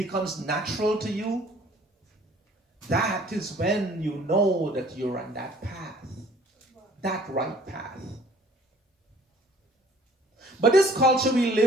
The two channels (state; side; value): normal; both; correlation 0.55